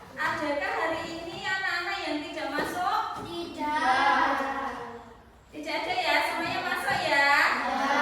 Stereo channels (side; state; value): both; identical; correlation 1.00